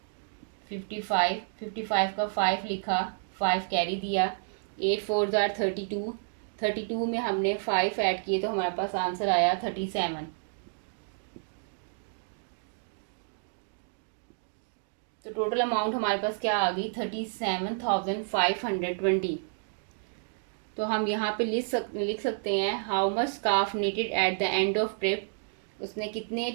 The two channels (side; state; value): left; silent; digital silence